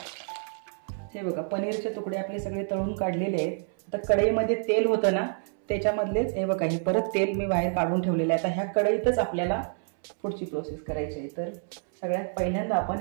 हे बघा, पनीरचे तुकडे आपले सगळे तळून काढलेले आहेत. आता कढईमध्ये तेल होतं ना, त्याच्यामधलेच हे बघा, हे परत तेल मी बाहेर काढून ठेवलेलं आहे. आता ह्या कढईतच आपल्याला पुढची प्रोसेस करायची आहे. तर सगळ्यात पहिल्यांदा आपण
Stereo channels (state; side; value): silent; left; 59 dB below the other